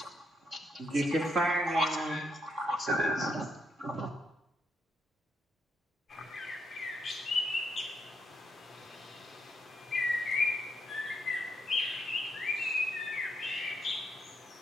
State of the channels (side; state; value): both; normal; correlation 0.77